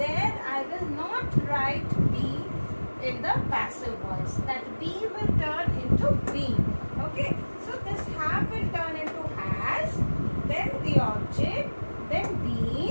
I will not write be in the passive voice. That be will turn into been. Okay, so this have will turn into has, then the object, then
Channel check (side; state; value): both; inverted; correlation -1.00